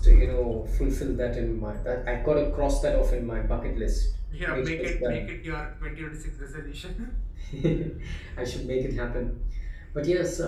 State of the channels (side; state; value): both; identical; correlation 1.00